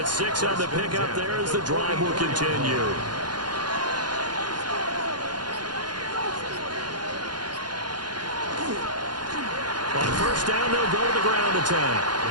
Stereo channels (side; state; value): left; late; 0.71 ms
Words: 6 on the pickup there as the drive will continue. On first down, they'll go to the ground attack.